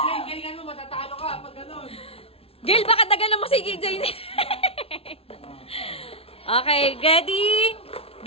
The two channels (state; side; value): late; right; 0.28 ms